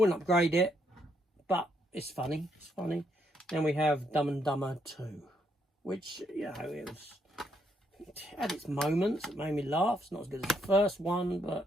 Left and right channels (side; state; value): both; normal; correlation 0.74